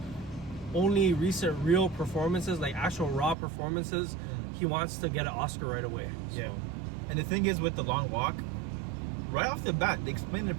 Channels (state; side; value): drops out; left; at 3.4 s